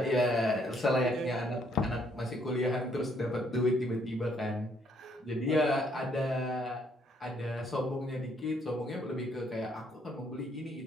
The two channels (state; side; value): normal; both; correlation 0.69